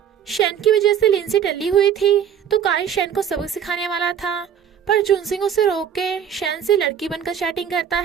शेन की वजह से लिंसी टल्ली हुई थी तो काई शेन को सबक सिखाने वाला था, पर जुनसिंग उसे रोक के शेन से लड़की बनकर चैटिंग करता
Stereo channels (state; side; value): quieter; left; 8.5 dB